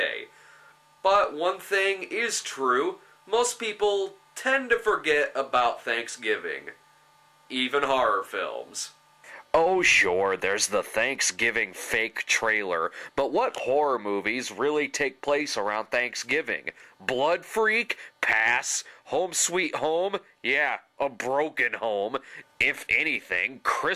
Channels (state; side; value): identical; both; correlation 1.00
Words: But one thing is true, most people tend to forget about Thanksgiving. Even horror films. Oh sure, there's the Thanksgiving fake trailer, but what horror movies really take place around Thanksgiving? Blood Freak? Pass. Home Sweet Home? Yeah, a broken home. If anything,